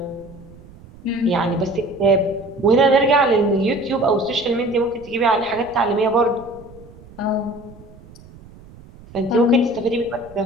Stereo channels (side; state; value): right; noise; rumble, 21 dB below the sound